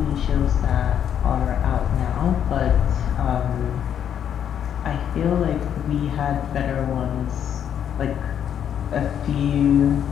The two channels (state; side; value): quieter; right; 9.1 dB